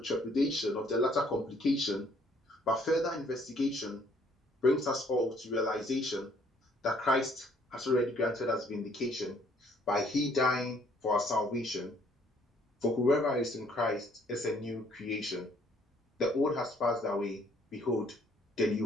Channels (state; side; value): normal; both; correlation 0.63